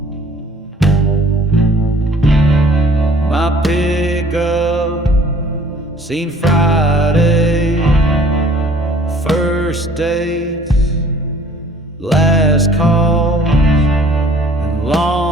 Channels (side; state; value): both; normal; correlation 0.54